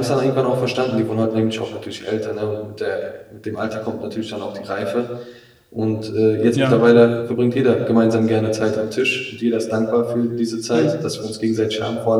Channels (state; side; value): identical; both; correlation 1.00